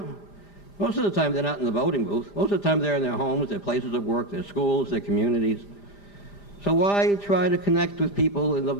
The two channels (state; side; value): late; right; 5.0 ms